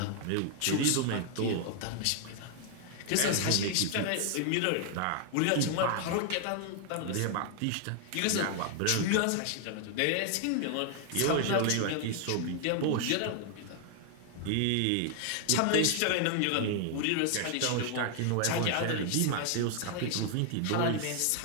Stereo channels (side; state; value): both; different; correlation 0.00